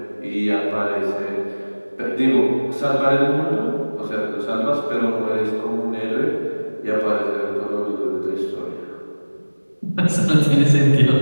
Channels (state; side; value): inverted; both; correlation -1.00